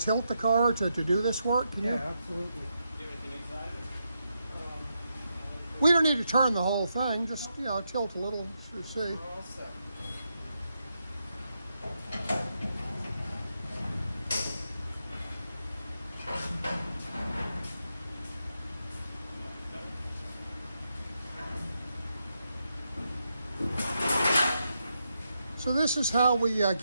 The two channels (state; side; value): inverted; both; correlation -0.83